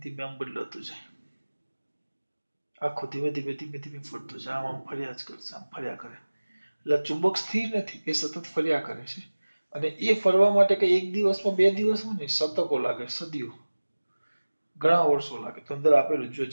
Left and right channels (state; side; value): inverted; both; correlation -1.00